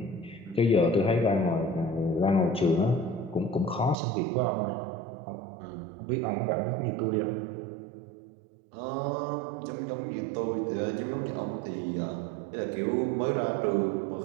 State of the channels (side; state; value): left; drops out; at 4.0 s